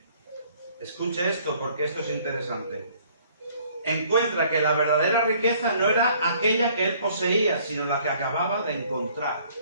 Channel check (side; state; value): both; inverted; correlation -0.59